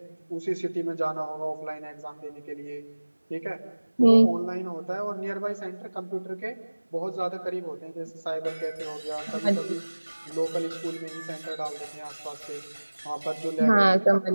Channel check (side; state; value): both; inverted; correlation -1.00